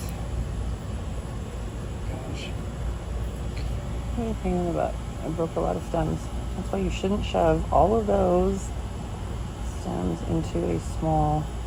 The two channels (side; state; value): both; identical; correlation 1.00